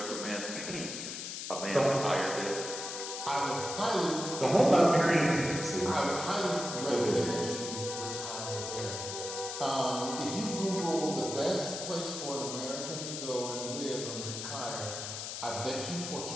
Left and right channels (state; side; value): noise; left; hiss, 6 dB below the sound